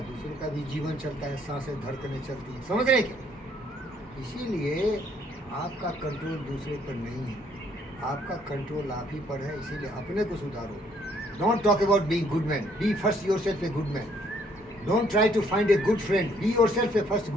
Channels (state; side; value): normal; both; correlation 0.66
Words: दूसरों का भी जीवन चलता है, सांसें धड़कनें चलती हैं। समझ रहे क्या? इसीलिए आपका कंट्रोल दूसरे पर नहीं है, आपका कंट्रोल आप ही पर है। इसीलिए अपने को सुधारो। Don't talk about being good man, be first yourself a good man. Don't try to find a good friend, be yourself a first